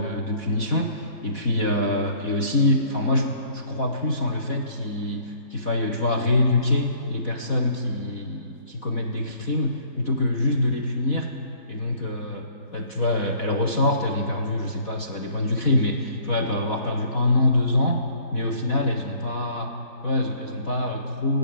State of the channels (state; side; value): late; right; 4.1 ms